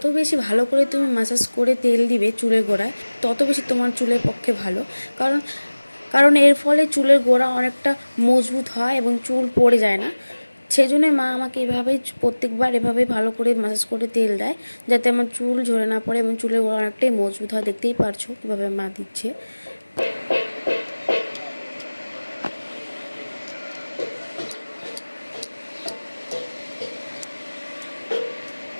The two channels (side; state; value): both; inverted; correlation -1.00